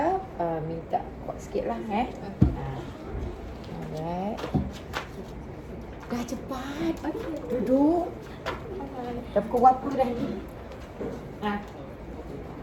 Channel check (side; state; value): both; identical; correlation 1.00